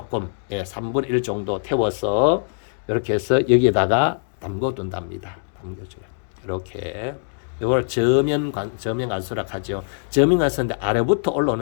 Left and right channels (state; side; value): silent; right; digital silence